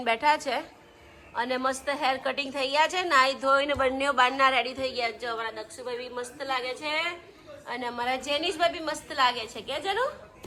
બેઠા છે અને મસ્ત હેર કટિંગ થઈ ગયા છે. નાઈ ધોઈને બંને બારના રેડી થઈ ગયા છે. અમારા દક્ષુભાઈ બી મસ્ત લાગે છે અને અમારા જેનીશભાઈ બી મસ્ત લાગે છે. કે જેનું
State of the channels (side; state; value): both; identical; correlation 1.00